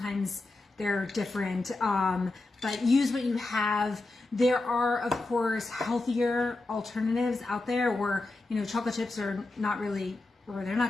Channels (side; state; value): right; quieter; 3.0 dB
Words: they're different, but use what you have. There are, of course, healthier alternatives out there where, chocolate chips are not really, or they're